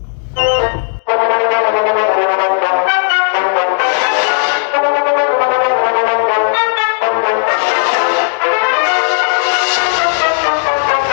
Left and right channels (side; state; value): right; silent; digital silence